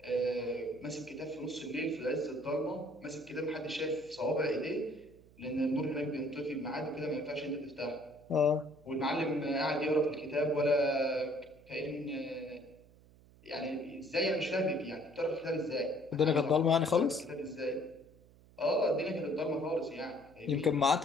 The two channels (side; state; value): right; noise; hum, 25 dB below the sound